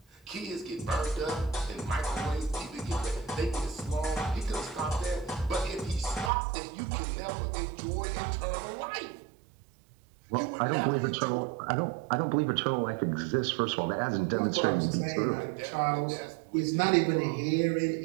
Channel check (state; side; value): drops out; left; at 6.3 s